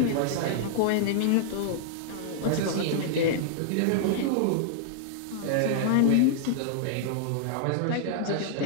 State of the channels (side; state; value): both; different; correlation -0.01